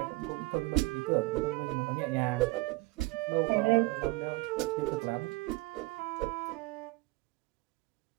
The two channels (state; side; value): quieter; left; 22.9 dB